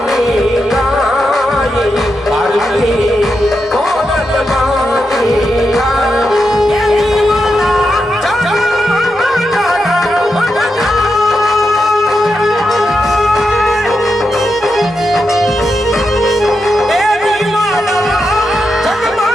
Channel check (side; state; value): both; normal; correlation 0.86